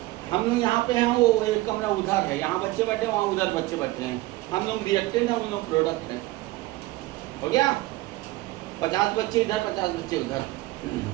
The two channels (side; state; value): left; quieter; 19.1 dB